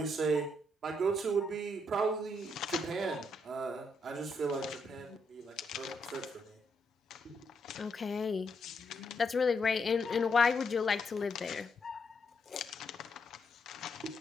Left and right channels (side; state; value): both; normal; correlation 0.77